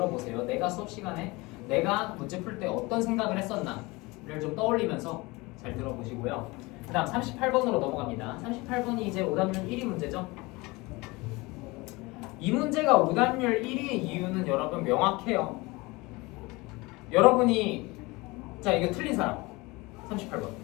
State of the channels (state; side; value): quieter; right; 23.5 dB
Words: 내가 수업 시간에 내가 문제 풀 때 어떤 생각을 했었나를 좀 떠올리면서 잘 들어보시고요. 그 다음 38번으로 넘어갑니다. 38번이 이제 오답률 1위 문제죠. 이 문제가 오답률 1위의 이유는 여러분 명확해요. 여러분이 자 이거 틀린 사람 38번